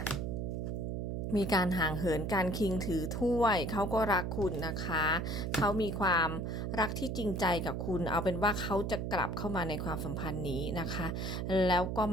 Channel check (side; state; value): right; noise; hum, 2 dB below the sound